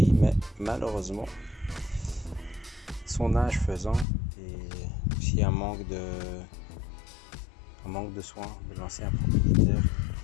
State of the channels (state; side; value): drops out; right; at 4.0 s